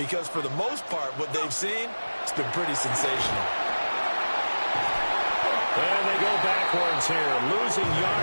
for the most part, what they've seen, it's been pretty sensational. And they go backwards here, losing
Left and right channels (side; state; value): both; inverted; correlation -1.00